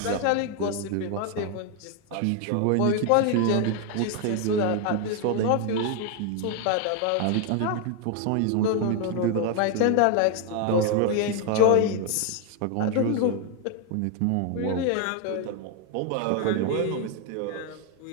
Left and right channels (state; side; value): different; both; correlation 0.01